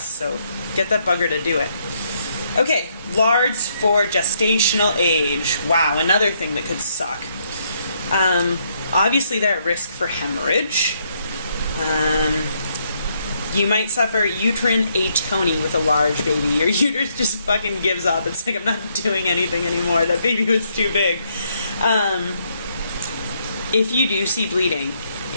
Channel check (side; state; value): both; inverted; correlation -0.73